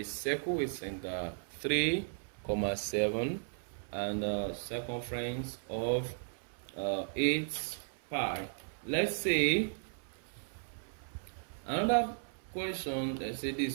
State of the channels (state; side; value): silent; left; 54 dB below the other